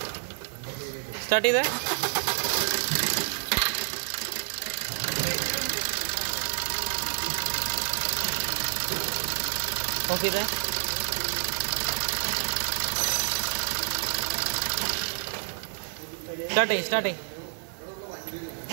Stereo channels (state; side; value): silent; left; 59 dB below the other